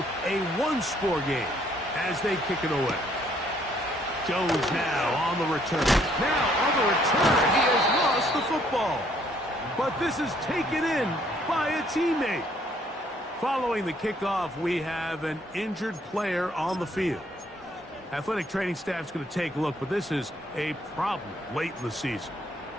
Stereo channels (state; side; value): normal; both; correlation 0.65